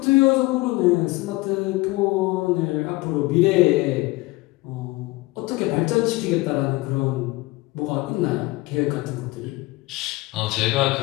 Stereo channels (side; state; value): right; quieter; 21.4 dB